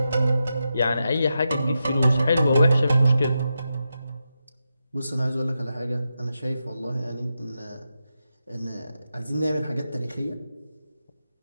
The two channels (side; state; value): both; inverted; correlation -0.88